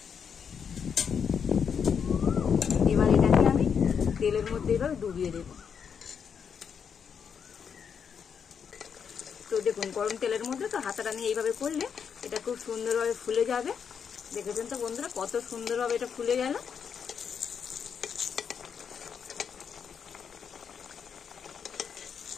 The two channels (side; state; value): right; quieter; 7.0 dB